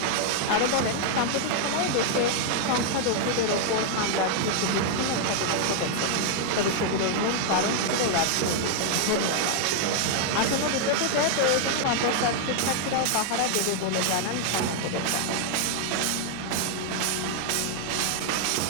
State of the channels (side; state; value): both; different; correlation 0.00